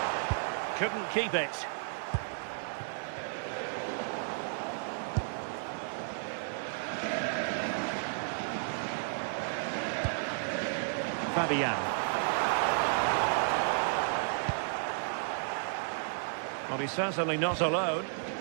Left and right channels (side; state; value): left; silent; digital silence